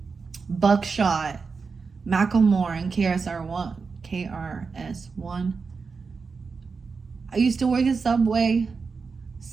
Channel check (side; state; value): left; quieter; 4.9 dB